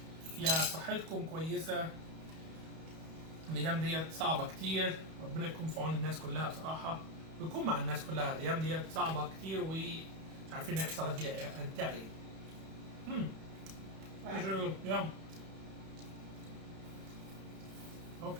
يا صحتكم كويسة. الايام ديت صعبة كتير، ربنا يكون في عون الناس كلها بصراحة، ويكون مع الناس كلها. الايام ديت صعبة كتير ومش عارفين نحصل هنتغي. Yeah.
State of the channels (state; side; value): late; left; 31 ms